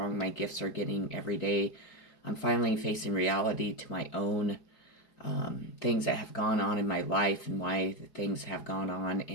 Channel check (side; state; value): right; late; 4.8 ms